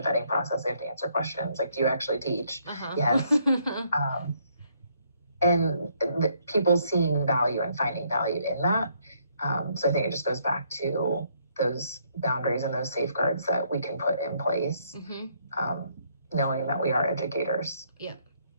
process. They have to answer questions. Like, do you actually teach? Yes. And people seeing value and finding value in that. So I think it just goes back to those boundaries and those safeguards that we can put in place, knowing that we are educators. Yeah.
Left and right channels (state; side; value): inverted; both; correlation -0.70